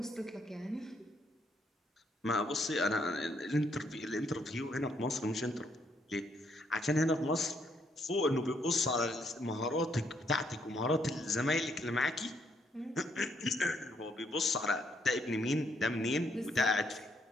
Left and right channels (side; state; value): both; normal; correlation 0.72